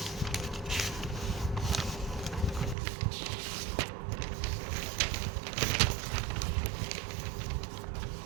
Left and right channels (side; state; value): left; drops out; at 2.8 s